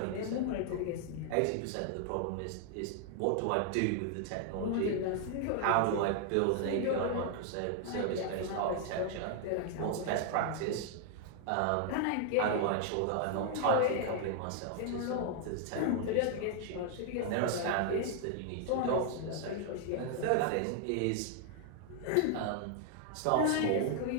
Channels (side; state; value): both; different; correlation 0.00